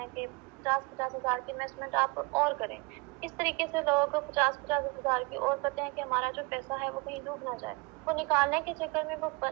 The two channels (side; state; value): left; quieter; 27.1 dB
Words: کہ 50,000 کی انویسٹمنٹ آپ اور کریں۔ اس طریقے سے لوگ 50,000 کی اور کرتے ہیں کہ ہمارا جو پیسہ ہے وہ کہیں ڈوب نہ جائے۔ وہ نکالنے کے چکر میں وہ